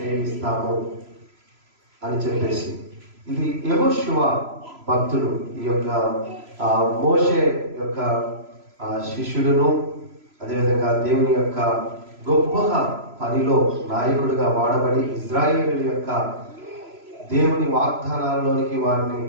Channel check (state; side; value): late; left; 3.0 ms